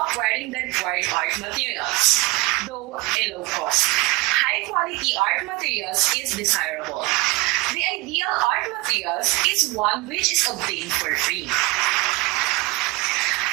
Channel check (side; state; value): left; quieter; 22.3 dB